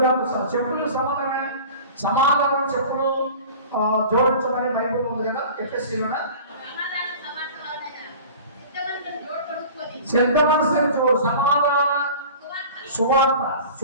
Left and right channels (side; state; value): both; inverted; correlation -0.40